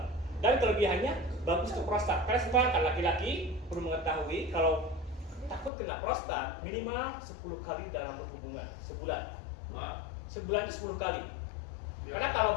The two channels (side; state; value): right; drops out; at 5.7 s